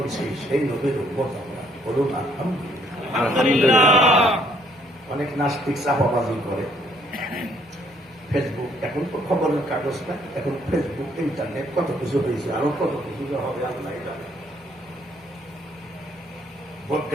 সেই নবীর উম্মত আমরা, বলুন আলহামদুলিল্লাহ। অনেক নাস্তিক চাপাবাজি করে। ফেসবুক, এখন তো খবরের কাগজ না, এখন ফেসবুক, ইন্টারনেট, কত কিছু হয়েছে, আরো কত কিছু হবে আল্লাহ জানে।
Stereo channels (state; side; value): normal; both; correlation 0.65